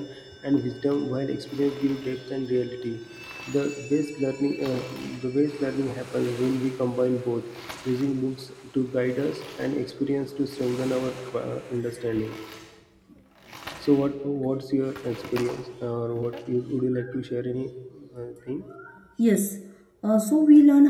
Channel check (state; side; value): identical; both; correlation 1.00